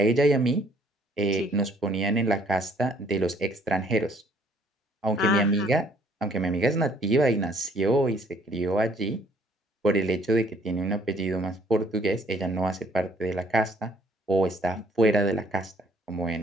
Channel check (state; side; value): normal; both; correlation 0.61